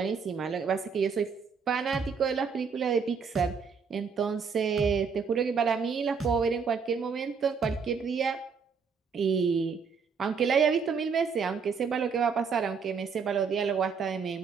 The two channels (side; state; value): left; quieter; 5.8 dB